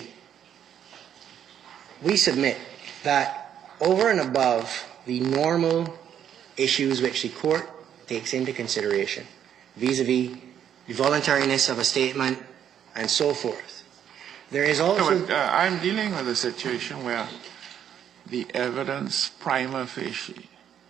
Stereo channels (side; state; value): left; quieter; 9.4 dB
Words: we submit that over and above the normal issues which the court takes into consideration, vis-a-vis the voluntariness of a statement and so forth, there is also... No, but, I'm dealing with a situation where the evidence prima facie